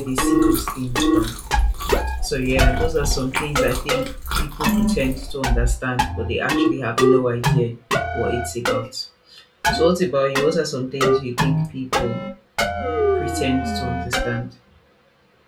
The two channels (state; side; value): identical; both; correlation 1.00